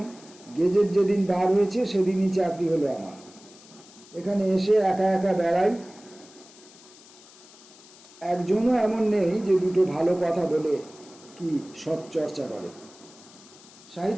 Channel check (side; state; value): left; noise; hiss, 22 dB below the sound